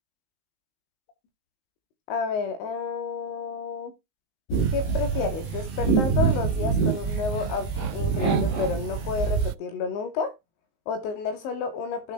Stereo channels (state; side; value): late; right; 19 ms